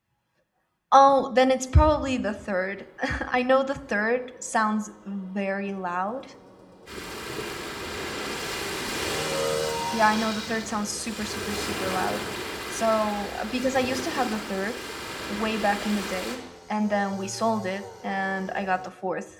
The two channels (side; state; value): both; identical; correlation 1.00